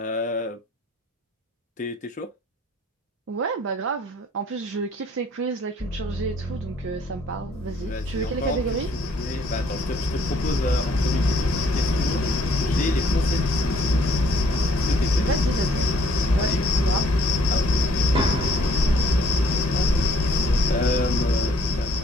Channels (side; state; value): both; normal; correlation 0.62